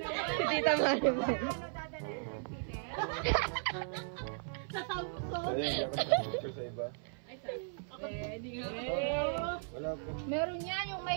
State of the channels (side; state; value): left; silent; 54 dB below the other